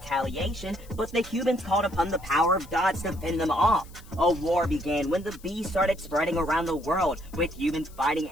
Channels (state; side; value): noise; left; hiss, 24 dB below the sound